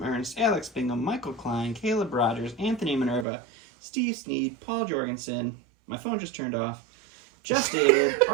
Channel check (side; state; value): left; drops out; at 3.2 s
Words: Ernst, Alex Bingham, Michael Klein, Caleb Rogers, Anthony Minerva, Steve Sneed, Paul Jorgensen, my phone just turned off, Just David,